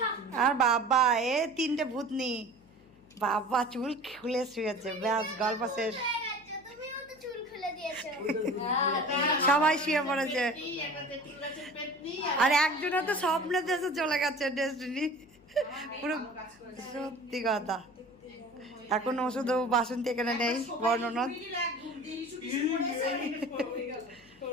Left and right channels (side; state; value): left; noise; hum, 28 dB below the sound